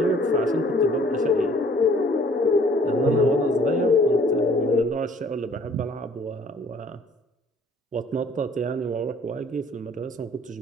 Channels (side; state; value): both; normal; correlation 0.56